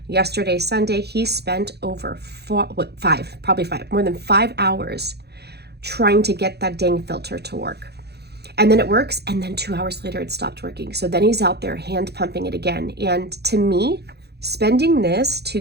yesterday Sunday, he spent over more than 5 hours trying to get that dang filter to work. And then it works, and then 2 hours later it stopped working. So then he's out there hand pumping it again. And to me, spending this to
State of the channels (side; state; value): left; late; 0.48 ms